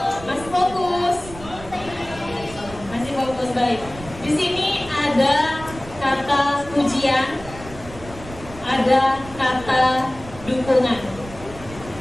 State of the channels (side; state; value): right; noise; rumble, 16 dB below the sound